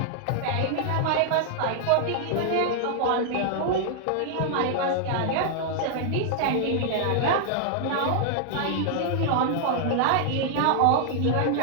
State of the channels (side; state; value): both; different; correlation 0.00